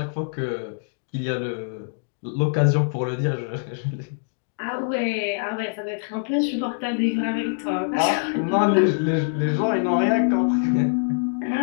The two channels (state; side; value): silent; right; digital silence